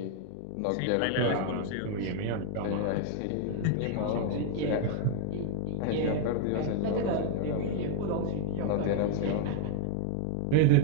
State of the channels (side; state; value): both; different; correlation 0.00